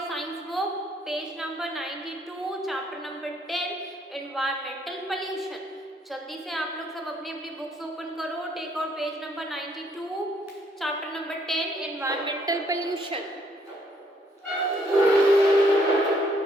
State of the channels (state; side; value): normal; both; correlation 0.68